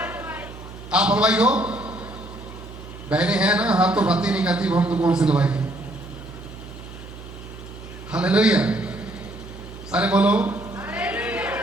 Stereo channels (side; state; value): right; noise; hum, 14 dB below the sound